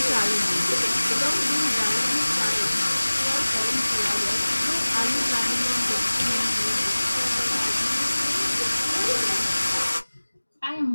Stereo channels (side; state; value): both; inverted; correlation -1.00